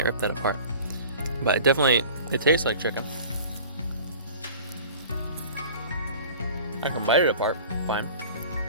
rip that apart. But it tastes like chicken. I can bite it apart, fine.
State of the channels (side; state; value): both; inverted; correlation -0.42